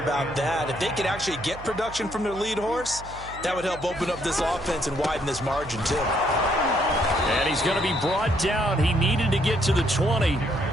about that. If they could actually get production from their lead horse, that would help open up this offense and widen this margin, too. And he's going to be brought down. He needed to get to the 20.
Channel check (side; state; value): right; noise; hum, 15 dB below the sound